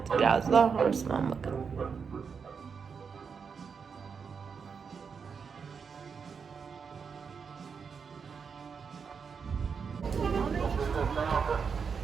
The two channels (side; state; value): left; quieter; 6.0 dB